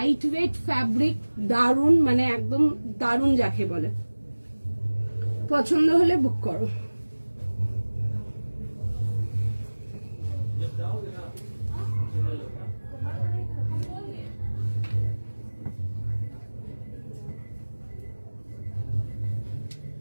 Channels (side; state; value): both; inverted; correlation -1.00